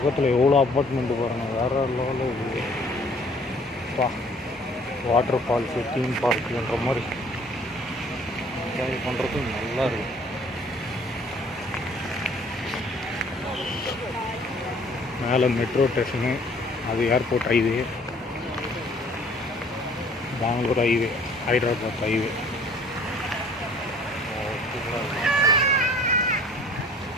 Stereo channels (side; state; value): both; normal; correlation 0.55